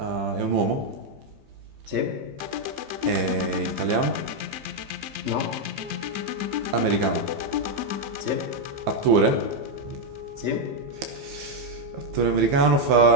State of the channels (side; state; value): left; late; 15 ms